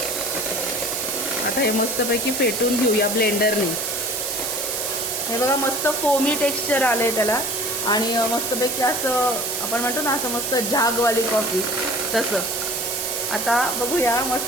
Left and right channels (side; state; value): right; noise; hiss, 2 dB below the sound